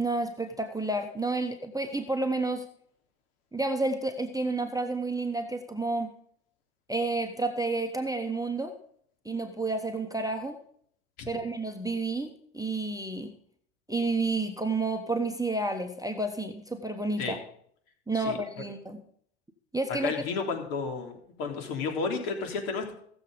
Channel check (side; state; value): both; normal; correlation 0.55